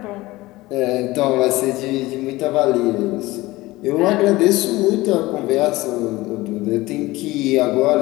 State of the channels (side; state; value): right; quieter; 19.4 dB